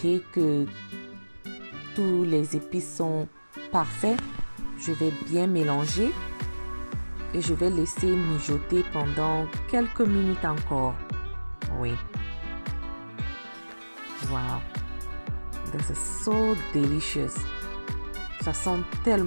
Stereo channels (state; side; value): inverted; both; correlation -1.00